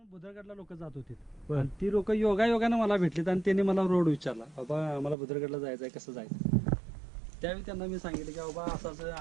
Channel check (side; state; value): left; drops out; at 5.2 s